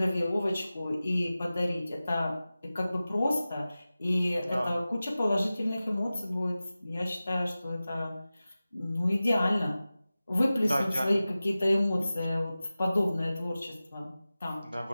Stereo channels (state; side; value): inverted; both; correlation -0.96